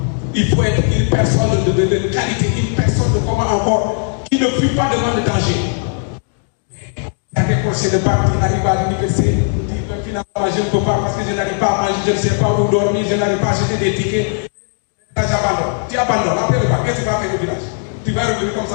Il faut être une personne de qualité, une personne de comment encore, qui ne fuit pas devant le danger. Il y a des procès de bac qui n'arrivent à l'université, qui finalement je ne peux pas parce que je n'arrive pas à manger, je ne sais pas où dormir, je n'arrive pas à acheter des tickets. Là, j'abandonne. Tu abandonnes. Après le bac, qu'est-ce que tu vas faire au village? Tu vas revenir comme ça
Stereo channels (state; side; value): silent; right; 64 dB below the other